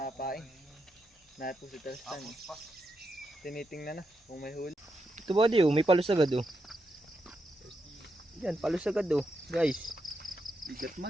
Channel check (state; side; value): normal; both; correlation 0.84